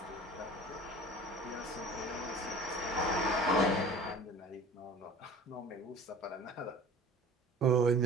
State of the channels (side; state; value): both; normal; correlation 0.43